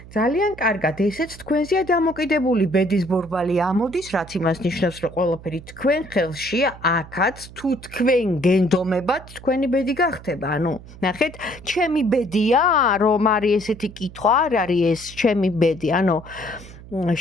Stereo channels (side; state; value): right; noise; hum, 18 dB below the sound